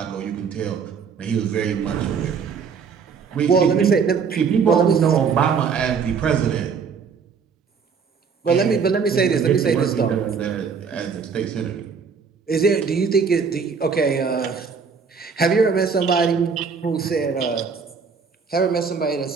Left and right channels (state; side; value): quieter; left; 5.9 dB